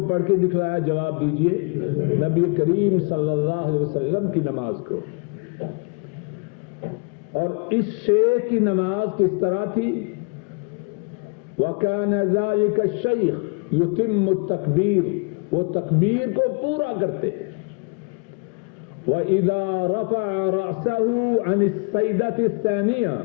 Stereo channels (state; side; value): quieter; right; 33.3 dB